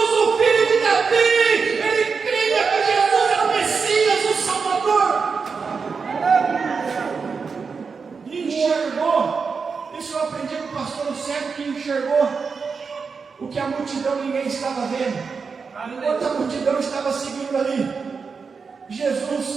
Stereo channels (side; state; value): left; quieter; 5.3 dB